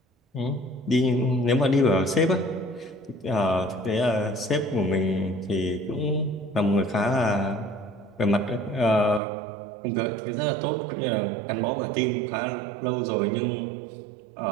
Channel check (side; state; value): left; drops out; at 9.2 s